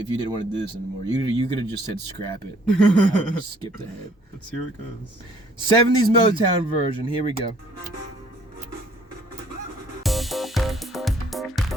didn't want to do this anymore. You could have just said scrap it. I would have skipped ahead. Let's see where it goes. 70s Motown version. Here we go.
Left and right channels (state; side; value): normal; both; correlation 0.60